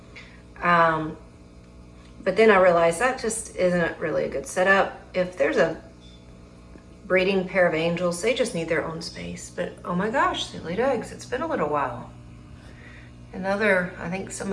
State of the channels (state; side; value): identical; both; correlation 1.00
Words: But then I realized that just isn't really a good setup. If there's a breeding pair of angels, they just need their own space. But oh my gosh, they laid eggs. It's been a little while. Another, I think